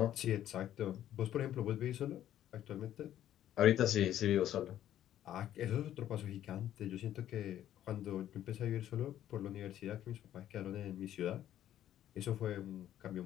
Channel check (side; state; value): right; quieter; 11.7 dB